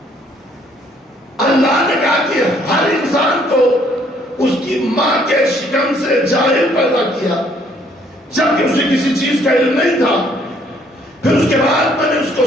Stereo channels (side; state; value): both; normal; correlation 0.64